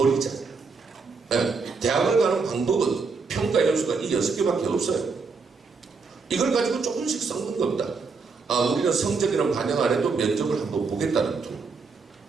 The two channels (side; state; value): left; quieter; 4.7 dB